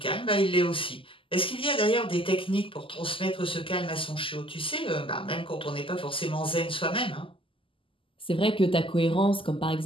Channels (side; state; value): right; late; 0.25 ms